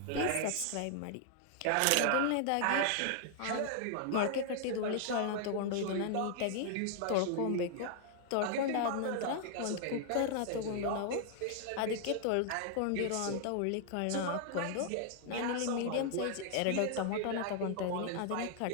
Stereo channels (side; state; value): both; different; correlation -0.01